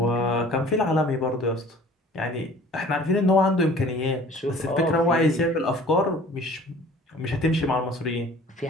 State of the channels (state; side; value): normal; both; correlation 0.48